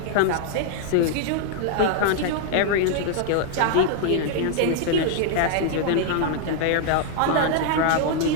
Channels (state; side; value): different; both; correlation 0.00